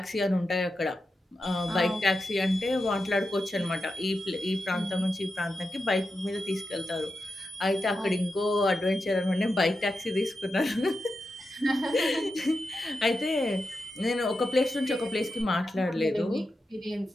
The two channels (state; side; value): normal; both; correlation 0.89